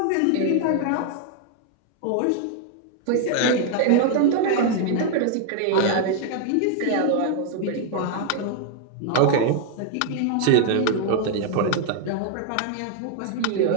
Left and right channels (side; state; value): both; different; correlation 0.00